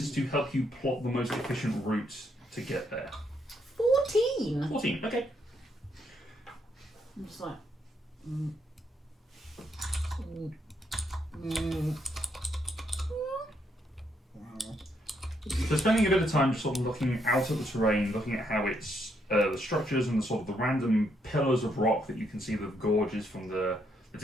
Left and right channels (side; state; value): both; normal; correlation 0.75